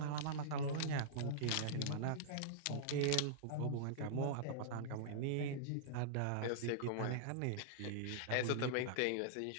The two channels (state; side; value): different; both; correlation -0.02